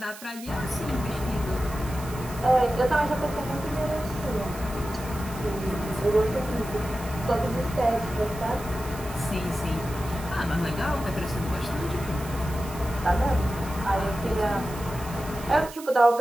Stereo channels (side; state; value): right; noise; hiss, 15 dB below the sound